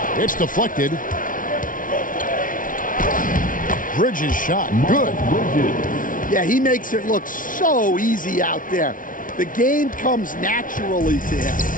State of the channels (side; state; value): right; late; 0.39 ms